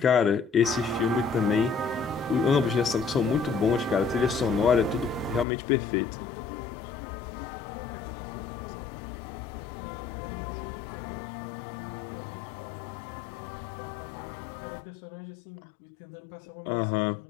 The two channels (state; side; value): drops out; right; at 5.5 s